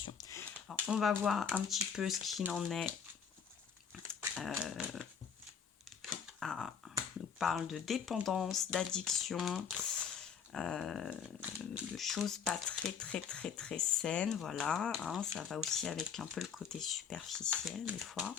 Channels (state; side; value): quieter; right; 7.0 dB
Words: Alors, on va voir un petit peu ce qu'il en est. On nous parle de dépendance, d'addiction, de choses pas très saines, voilà. Ça va aussi avec un peu le côté superficiel des fois.